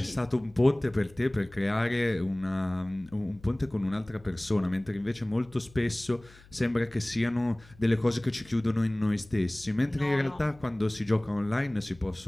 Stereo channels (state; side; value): noise; left; hum, 24 dB below the sound